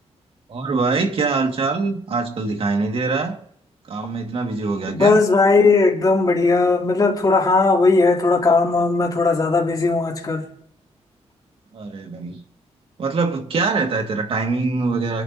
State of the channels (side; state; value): both; normal; correlation 0.65